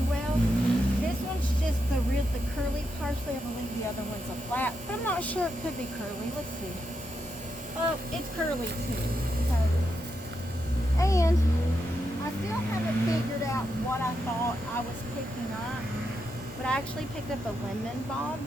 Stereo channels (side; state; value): both; normal; correlation 0.84